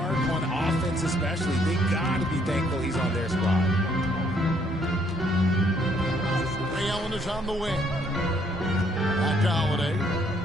on offense especially. They got to be thankful he's on their squad. Ray Allen is on the wing. Back to Holiday.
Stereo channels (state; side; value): normal; both; correlation 0.67